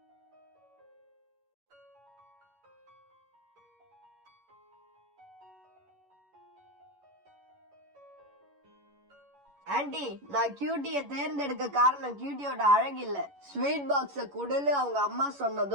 ஆண்டி, நான் கியூட்டிய தேர்ந்தெடுக்க காரணம் கியூட்டியோட அழகு இல்ல, ஸ்வீட் பாக்ஸ குடுன்னு அவங்க அம்மா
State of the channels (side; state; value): left; late; 11 ms